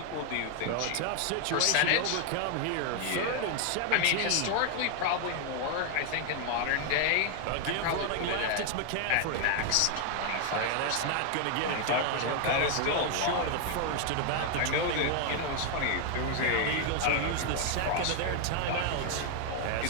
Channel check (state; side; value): different; both; correlation 0.00